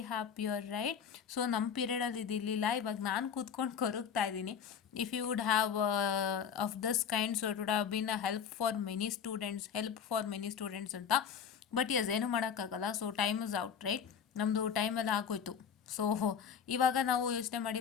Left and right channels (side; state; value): right; quieter; 7.4 dB